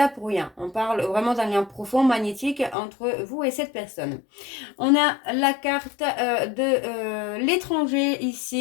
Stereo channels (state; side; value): drops out; right; at 2.8 s